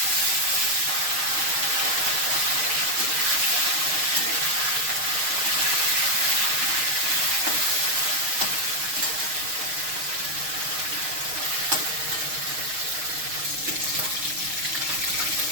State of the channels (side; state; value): left; late; 6.5 ms